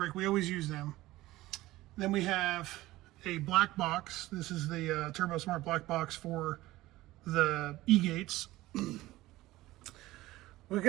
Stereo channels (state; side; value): quieter; left; 17.5 dB